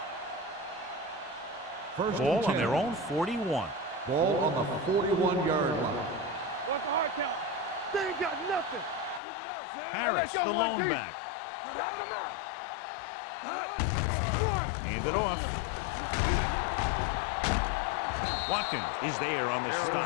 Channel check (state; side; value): drops out; right; at 9.2 s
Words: Ball on their own 41. Ball on the 41-yard line. What's the hard count? They ain't got nothing. Keep it up, Sam. Harris, the lone back. Knock him out. Hand it off. Watkins is there on the